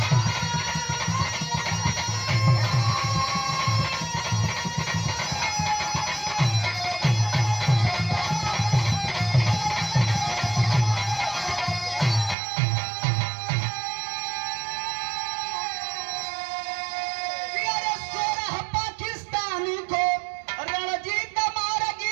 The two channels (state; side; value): drops out; left; at 12.4 s